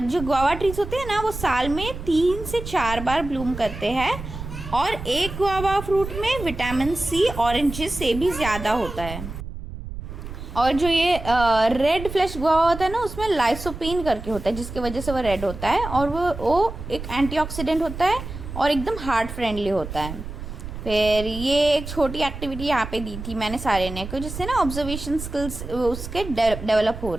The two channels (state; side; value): noise; right; rumble, 9 dB below the sound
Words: जो गुआवा ट्रीज होते हैं ना वो साल में 3 से 4 बार ब्लूम करते हैं और एक गुआवा फ्रूट में विटामिन सी ऑरेंजेस से भी ज़्यादा होता है। और जो ये रेड फ्लैश गुआवा होता है ना उसमें लाइसोपीन करके होता है जिसकी वजह से वो रेड होता है और वो एक एंटीऑक्सीडेंट होता है और एकदम हार्ट फ्रेंडली होता है। फिर ये एक छोटी एक्टिविटी यहाँ पे दी थी मैंने सारे को जिससे ना ऑब्जर्वेशन स्किल्स उसके डेवलप हो